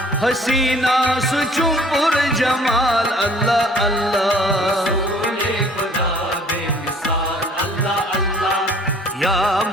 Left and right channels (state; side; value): normal; both; correlation 0.54